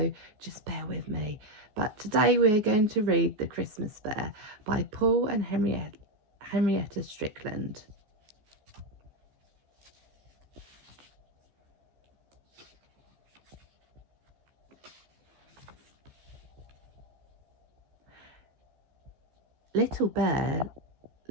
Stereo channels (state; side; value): late; left; 14 ms